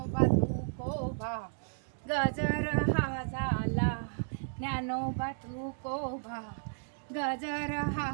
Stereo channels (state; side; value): silent; left; digital silence